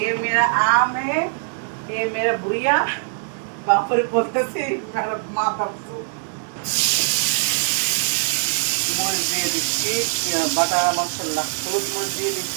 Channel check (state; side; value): silent; left; 61 dB below the other